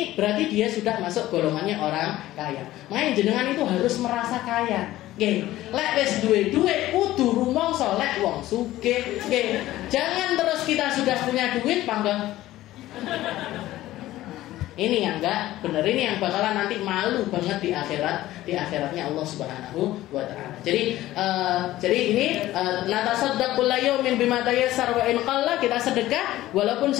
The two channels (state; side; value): quieter; right; 15.5 dB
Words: berarti dia sudah masuk golongannya orang kaya. Makanya jenengan itu harus merasa kaya. Lek wis duwe duit kudu rumangsa lek wong sugih. Jangan terus kita sudah punya duit pangga. Ini yang enggak benar, ini yang bakalan nanti malu banget di akhiratnya Allah Subhanahu wa taala. Jadi ini natasaddaqu layumin bima tayassar wa in qalla, kita sedekah walaupun